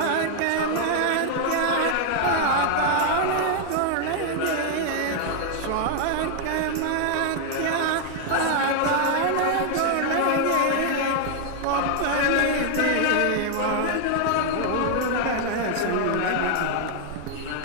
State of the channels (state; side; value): different; both; correlation 0.00